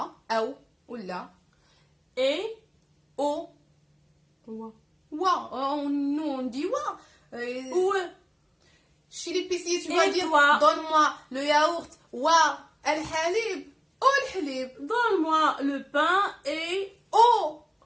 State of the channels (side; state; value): both; identical; correlation 1.00